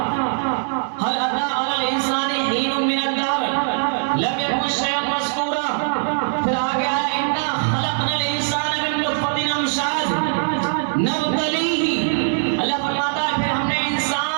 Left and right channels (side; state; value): left; silent; digital silence